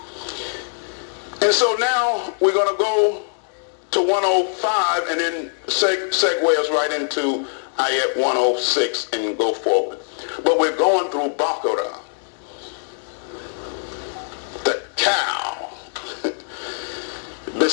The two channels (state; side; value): silent; right; digital silence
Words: And so now we're going to go to 105 and then segue us right into ayat 106 and go forward. But we're going through BAQARAH, the cow.